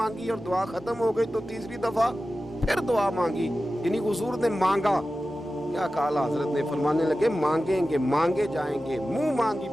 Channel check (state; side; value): normal; both; correlation 0.94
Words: और दुआ खत्म हो गई तो तीसरी दफा फिर दुआ मांगी, यानी हुजूर ने मांगा। क्या कहा हजरत ने, फरमाने लगे मांगेंगे मांगे जाएंगे, मुंह मांगी